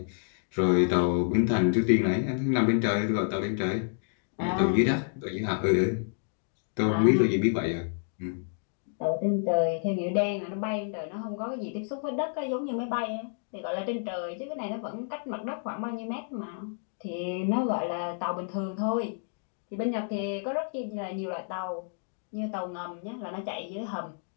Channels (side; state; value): right; silent; digital silence